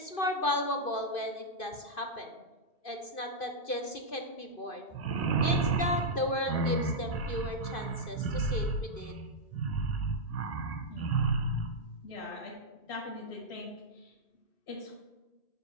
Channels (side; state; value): right; late; 2.5 ms